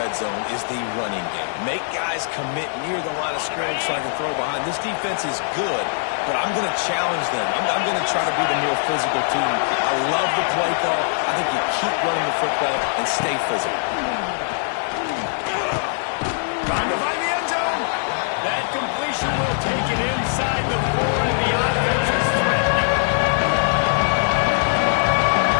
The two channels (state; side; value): silent; right; 58 dB below the other